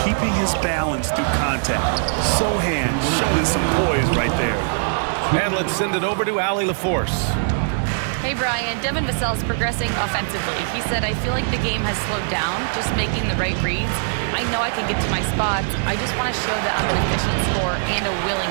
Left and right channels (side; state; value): left; silent; digital silence